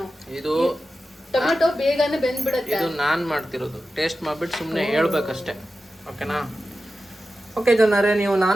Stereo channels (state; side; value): normal; both; correlation 0.93